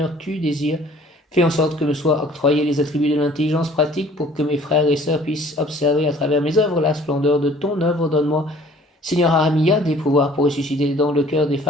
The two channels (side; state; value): both; normal; correlation 0.53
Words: tu désires. Fais en sorte que me soient octroyés les attributs de l'intelligence pratique pour que mes frères et sœurs puissent observer à travers mes œuvres la splendeur de ton œuvre. Donne-moi, Seigneur Ahamia, des pouvoirs pour ressusciter dans le cœur des